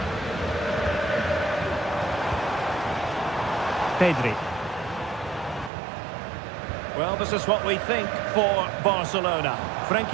Pedri. Well, this is what we think for Barcelona.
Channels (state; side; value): drops out; left; at 5.7 s